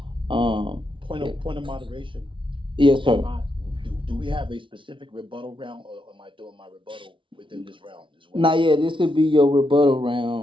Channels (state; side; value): late; left; 0.25 ms